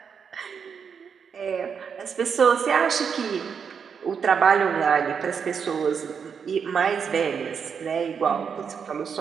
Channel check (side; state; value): left; quieter; 6.6 dB